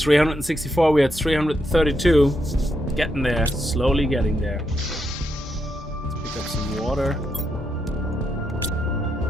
we're at 332. Getting there, slowly getting there. Let's pick up some water.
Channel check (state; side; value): normal; both; correlation 0.81